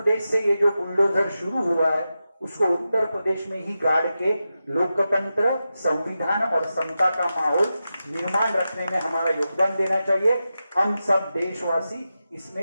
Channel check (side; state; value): both; inverted; correlation -0.91